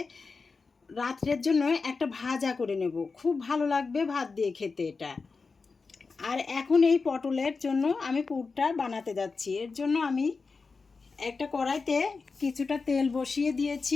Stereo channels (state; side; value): quieter; right; 4.5 dB